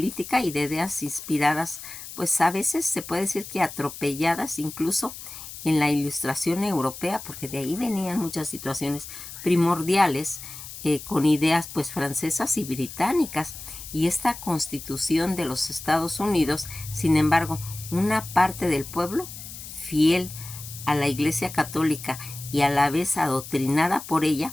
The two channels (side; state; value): left; noise; hiss, 12 dB below the sound